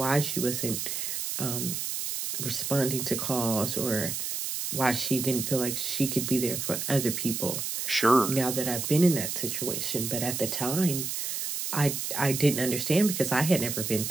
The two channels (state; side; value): noise; right; hiss, 3 dB below the sound